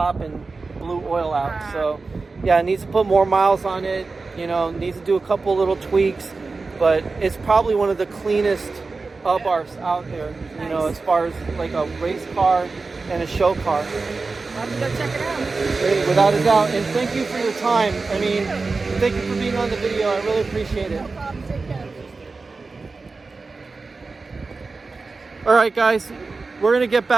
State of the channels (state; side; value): quieter; left; 4.0 dB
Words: and blew oil out. So, yeah, it needs to put more miles on it. You know, needs to do a couple little tweaks, but it's probably one of the cleanest Abarths out there. You know, as far as like a race car and a show car. I'll have to go check it out. Without a doubt. And thank you for your time. I mean, thank you for being on the video. I really appreciate it. No problem, take care. All right, guys, we're going to get